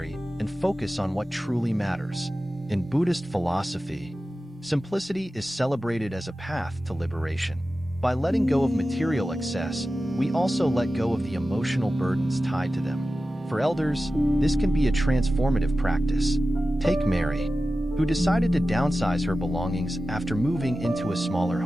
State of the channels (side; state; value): both; normal; correlation 0.94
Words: and focus on what truly matters. In Buddhist philosophy, simplicity is celebrated as a path to liberation. By letting go of material excess, we also let go of the emotional burdens tied to them. For elders, this can be a transformative practice. Take Mary, who decided to downsize her belongings after moving into a smaller